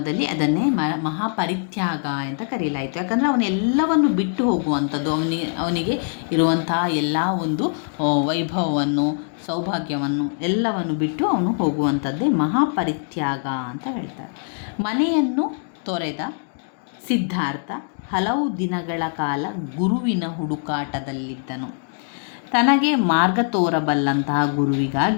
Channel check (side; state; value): right; silent; 63 dB below the other